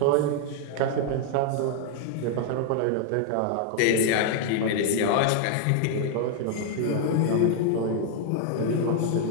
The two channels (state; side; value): different; both; correlation 0.00